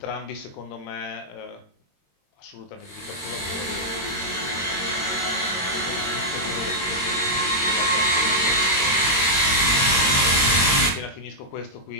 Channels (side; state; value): right; late; 22 ms